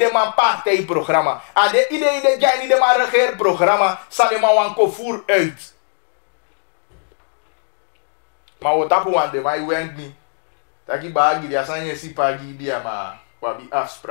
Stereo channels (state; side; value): silent; right; digital silence